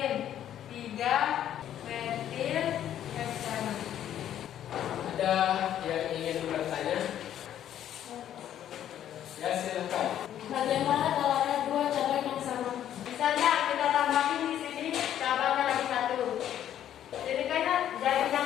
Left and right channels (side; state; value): right; quieter; 10.9 dB